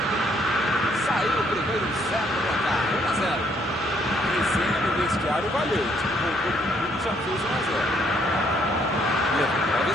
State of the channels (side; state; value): both; normal; correlation 0.68